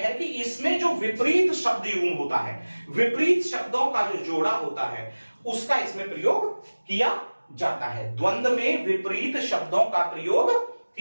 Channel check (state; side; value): inverted; both; correlation -1.00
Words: कि इसमें जो विपरीत शब्द युग्म होता है, विपरीत शब्दों का जो जोड़ा होता है उसका इसमें प्रयोग किया जाता है। द्वंद्व में विपरीत शब्दों का प्रयोग